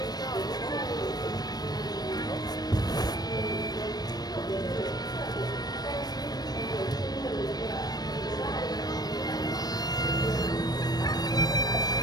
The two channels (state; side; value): late; right; 0.19 ms